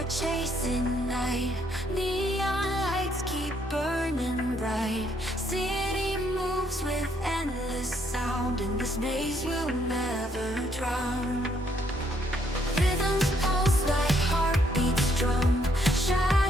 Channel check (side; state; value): both; normal; correlation 0.70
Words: chasing night. Neon lights keep burning bright. City moves with endless sound, and this maze will never drown. Rhythms pulse like heartbeats drum.